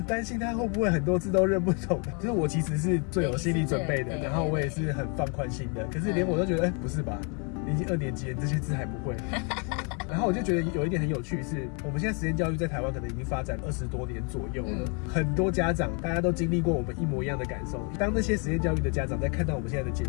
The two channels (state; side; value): quieter; right; 36.1 dB